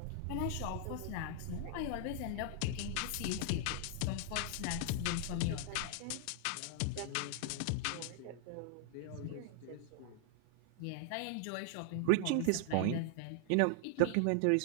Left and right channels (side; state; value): both; different; correlation 0.00